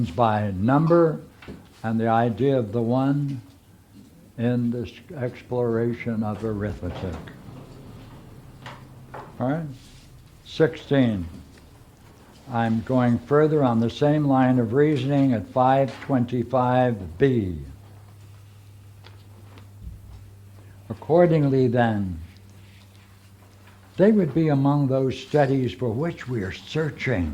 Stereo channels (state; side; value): identical; both; correlation 1.00